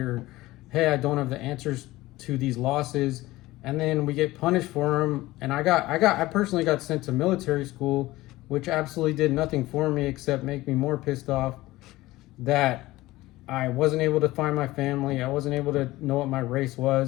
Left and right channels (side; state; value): right; quieter; 18.2 dB